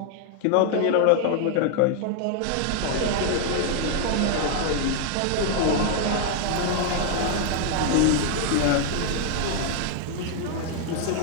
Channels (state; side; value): different; both; correlation 0.00